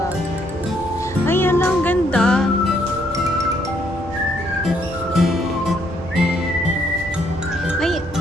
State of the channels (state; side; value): normal; both; correlation 0.70